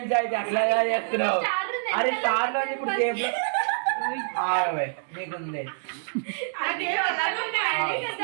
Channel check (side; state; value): left; silent; digital silence